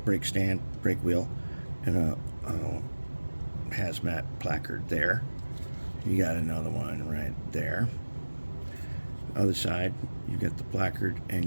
brake stand, brake wheel, and a hazmat placard there. You got another one right there. Other side, you got the placard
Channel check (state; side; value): inverted; both; correlation -1.00